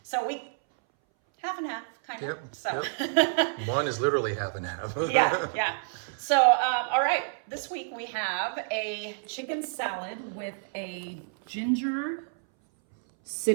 So we half and half, kind of. Yep. So Yep. One is literally half and half. yeah. So all right, this week we have a chicken salad with a ginger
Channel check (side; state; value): left; silent; 59 dB below the other